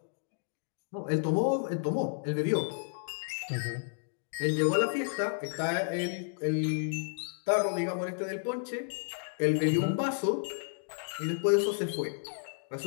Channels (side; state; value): right; silent; digital silence